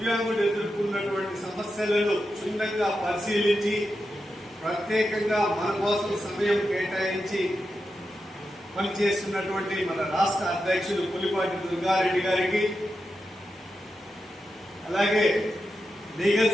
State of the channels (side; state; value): both; normal; correlation 0.89